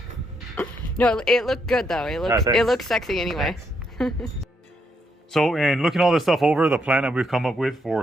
No, it looked good though. It looked sexy anyway. So in looking all this stuff over, the plan that we've come up with for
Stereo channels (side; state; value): both; normal; correlation 0.77